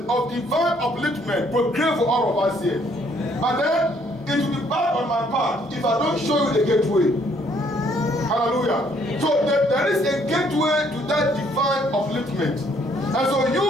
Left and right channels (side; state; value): both; normal; correlation 0.66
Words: of divine upliftment proclaimed for all of us here. But then, it will be bad on my part if I don't show you the gateway. Hallelujah. So there is a gateway to that divine upliftment. And so